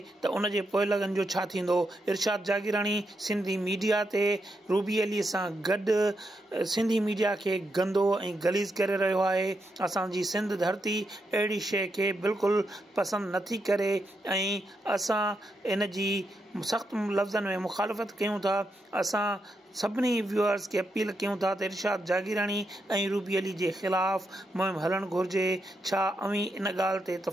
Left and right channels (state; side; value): normal; both; correlation 0.83